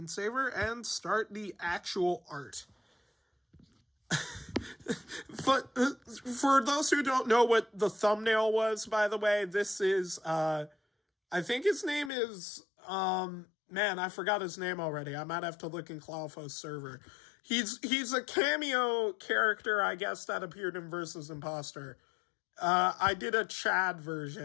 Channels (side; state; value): right; drops out; at 12.1 s